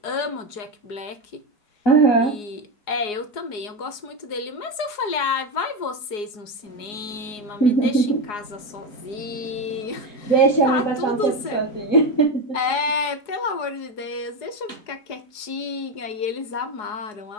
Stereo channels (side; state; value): right; late; 4.8 ms